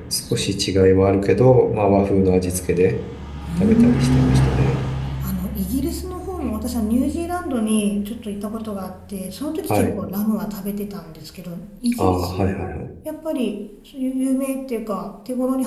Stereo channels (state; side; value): identical; both; correlation 1.00